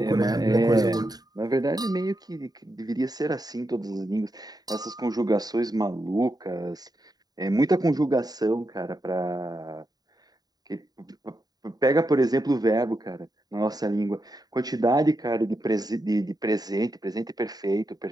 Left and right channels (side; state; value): left; late; 0.19 ms